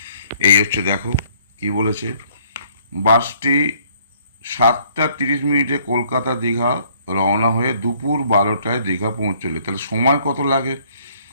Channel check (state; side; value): inverted; both; correlation -0.62